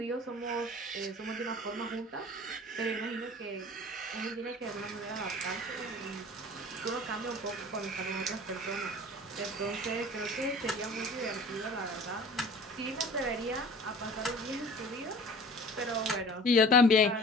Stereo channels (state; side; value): normal; both; correlation 0.44